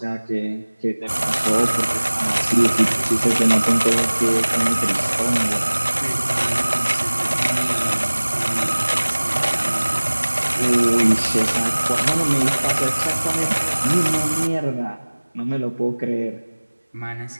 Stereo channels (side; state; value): both; inverted; correlation -1.00